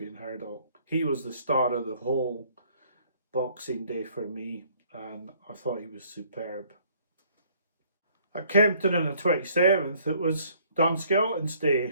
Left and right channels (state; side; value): inverted; both; correlation -0.61